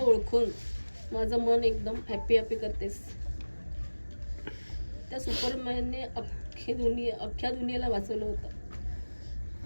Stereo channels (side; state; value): both; inverted; correlation -1.00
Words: माझं मन एकदम हॅपी हॅपी करतेस. त्या सुपरमॅनने अख्ख्या दुनियेला वाचवलं होतं